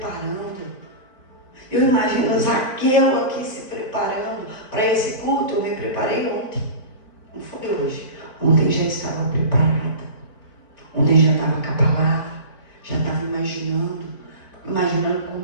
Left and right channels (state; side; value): late; right; 4.5 ms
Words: Eu imagino Zaqueu aqui se preparando para esse culto. Eu me preparei ontem. Não foi hoje. Ontem já estava preparada. Ontem já estava com a palavra. Já estava imaginando